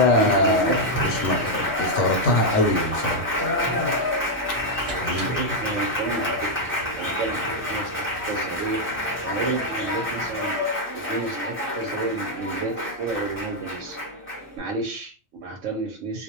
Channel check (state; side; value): normal; both; correlation 0.00